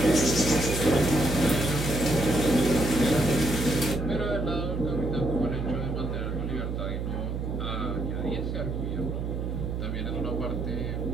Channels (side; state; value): right; noise; hum, 3 dB below the sound